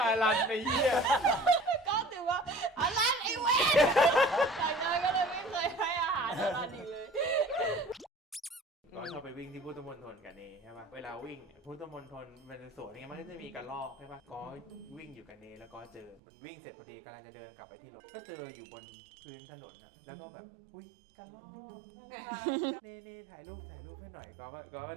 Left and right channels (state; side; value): drops out; left; at 16.2 s